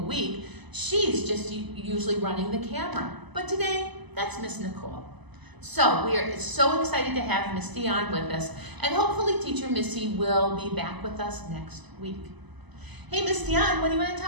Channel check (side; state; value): left; late; 1.0 ms